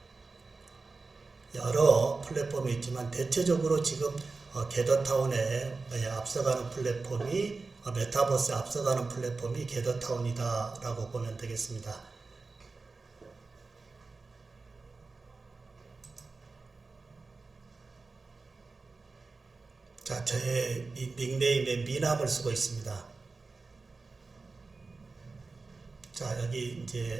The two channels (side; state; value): left; quieter; 4.0 dB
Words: 여러 플랫폼이 있지만 대체적으로 지금 게더타운에 앞서가는 플랫폼이 메타버스에 앞서가는 플랫폼이 게더타운이다 라고 보면 되겠습니다. 자, 저의 이 닉네임에 미남을 쓰고 있습니다. 자, 여기